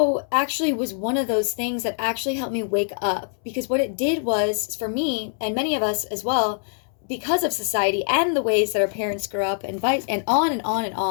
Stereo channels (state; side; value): silent; right; 63 dB below the other